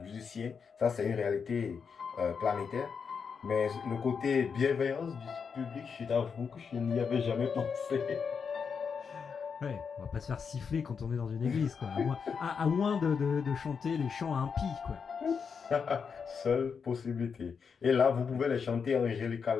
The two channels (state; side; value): quieter; right; 6.1 dB